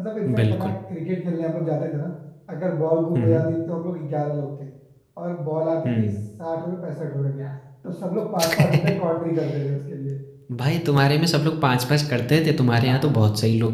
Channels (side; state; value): both; identical; correlation 1.00